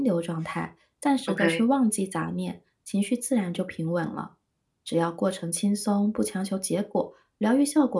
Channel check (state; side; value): identical; both; correlation 1.00